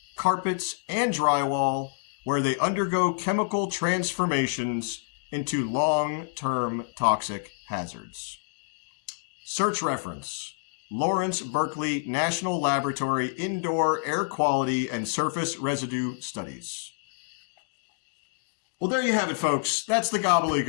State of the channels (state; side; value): silent; right; digital silence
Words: carpets, and drywall, where they undergo chemical transformations into long-term toxic hazards. Search reference: Lawrence Berkeley National Laboratory Indoor Air Quality and Surface Residue Studies. Well, there you have it, folks. That's the